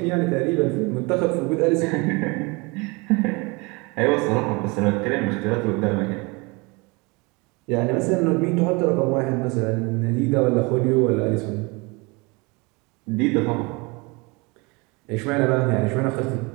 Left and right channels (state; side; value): quieter; left; 27.3 dB